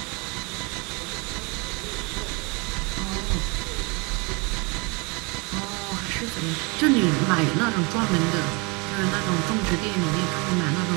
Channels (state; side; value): quieter; left; 29.6 dB